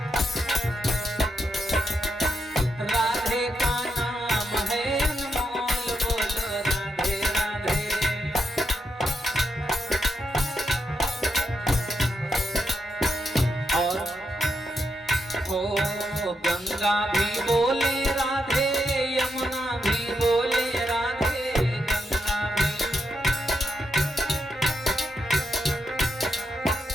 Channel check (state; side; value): normal; both; correlation 0.82